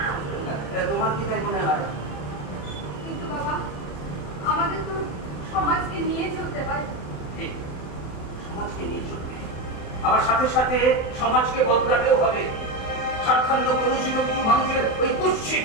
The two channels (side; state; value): right; late; 28 ms